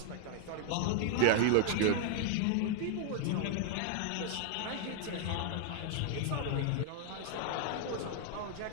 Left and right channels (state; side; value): different; both; correlation 0.00